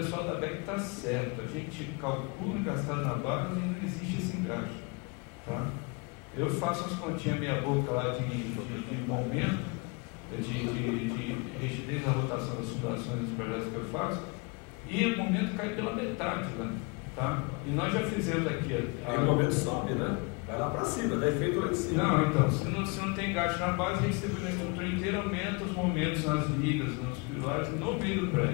da BEC está certo, a gente calcula gastado na base e não existe esse engajo. Tá? Eu faço as continhas meia boca lá de momento, de rigidez da rotação das fundações dos projetos que eu faço, e o momento cai pela metade lá. Tá? E nós já fizemos aqui. E o momento sobe, né? Vai lá para cima, dá efeito lá em cima. Não, então, se não tem engaste na base, a gente distribui a estrutura inteira, aumenta os momentos nas ligas, nos pilares, no meio do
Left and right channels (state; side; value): quieter; right; 29.4 dB